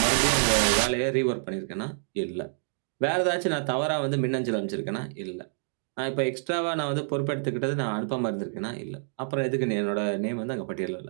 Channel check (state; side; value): silent; left; digital silence